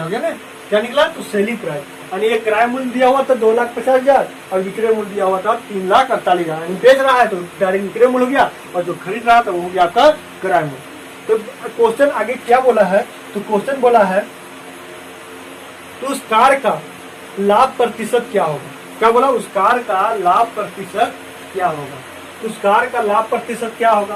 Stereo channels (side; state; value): both; identical; correlation 1.00